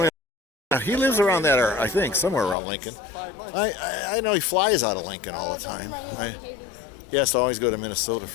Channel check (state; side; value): drops out; right; at 2.6 s